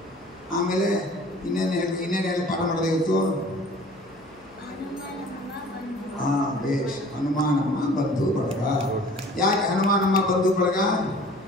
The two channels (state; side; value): noise; left; hum, 28 dB below the sound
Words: ಆಮೇಲೆ ಇನ್ನೇನು ಹೇಳಿ ಪಾಠ ಮಾಡೋದು ಇವತ್ತು? ಬೇಷ್. ಹನುಮಾನಮ್ಮ ಬಂಧು ಬಳಗ. ಯಾಕೆ ಹನುಮಾನಮ್ಮ ಬಂಧು ಬಳಗ?